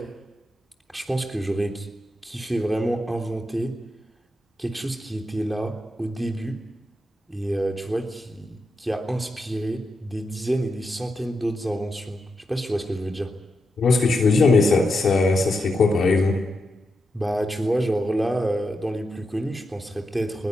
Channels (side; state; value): both; normal; correlation 0.86